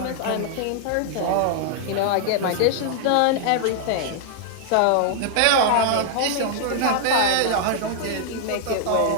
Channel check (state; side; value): different; both; correlation -0.01